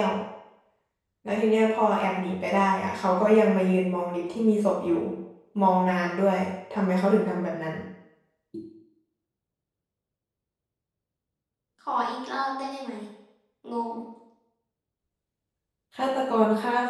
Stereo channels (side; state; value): both; identical; correlation 1.00